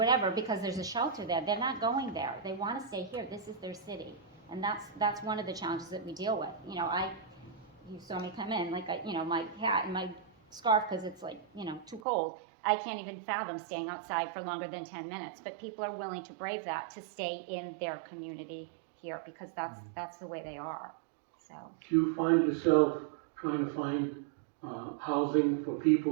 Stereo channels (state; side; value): drops out; left; at 12.0 s